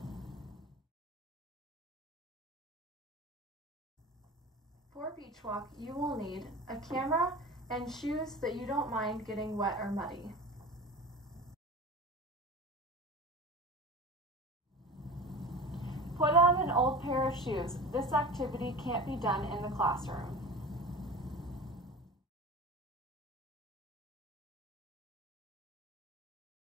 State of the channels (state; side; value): normal; both; correlation 0.33